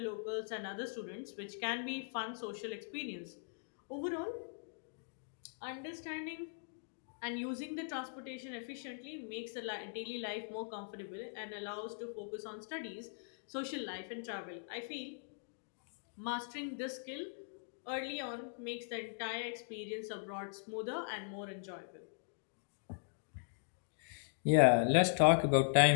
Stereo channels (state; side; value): silent; right; digital silence